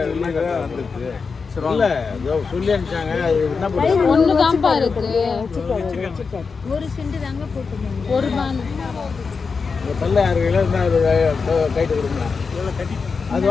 இல்ல சொல்லி அனுப்பிச்சாங்க என்ன பண்ணுறது ஒன்று தான்ப்பா இருக்கு ஒரு சென்ட் தாங்க போட்டுருந்தாங்க ஒரு பான் தள்ள 6 கிலோ இருந்தால் கைட்டு கொடுங்க அது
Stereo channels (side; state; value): right; quieter; 5.0 dB